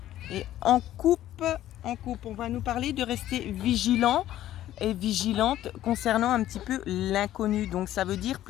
Et en coupe, on va nous parler de rester vigilant et vigilante concernant un petit peu l'inconnu. Donc ça veut dire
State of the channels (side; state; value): right; quieter; 13.1 dB